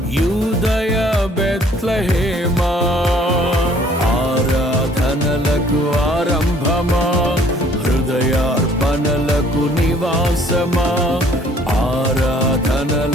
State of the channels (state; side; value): normal; both; correlation 0.58